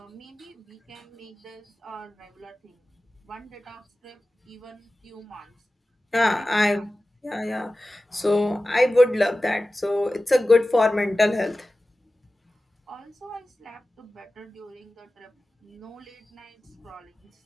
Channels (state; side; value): normal; both; correlation 0.96